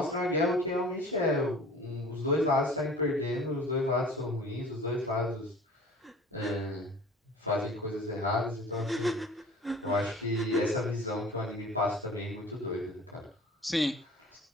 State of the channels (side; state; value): both; normal; correlation 0.44